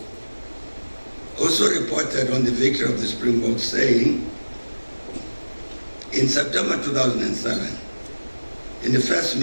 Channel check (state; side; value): inverted; both; correlation -1.00